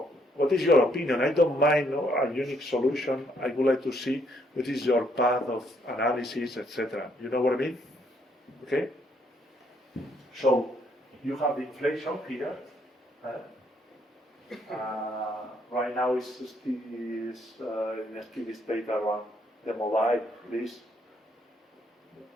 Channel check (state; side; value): normal; both; correlation 0.71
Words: what is your opinion? I don't mind a unique solution. I would like to see what is your path of analysis, etc. You know what I mean? Okay? So you have the inflation here. Right now it's in a steady state around the mobile, please.